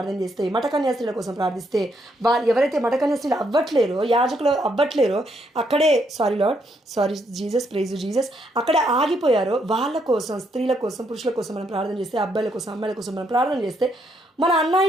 చేస్తే, మఠకన్యాస్త్రీల కోసం ప్రార్థిస్తే, వాళ్ళు ఎవరైతే మఠకన్యాస్త్రీలు అవ్వట్లేరో, యాజకులు అవ్వట్లేరో, అక్కడే సారీ జీసస్, ప్రైజ్ జీసస్, అక్కడే ఆగిపోయారో వాళ్ళ కోసం, స్త్రీల కోసం, పురుషుల కోసం మనం ప్రార్థన చేస్తే, అబ్బాయిల కోసం, అమ్మాయిల కోసం మనం ప్రార్థన చేస్తే, మన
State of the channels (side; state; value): both; normal; correlation 0.75